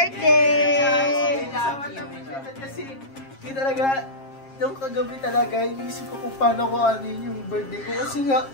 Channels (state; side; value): late; right; 7.4 ms